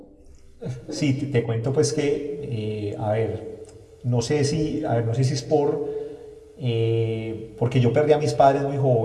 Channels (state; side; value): identical; both; correlation 1.00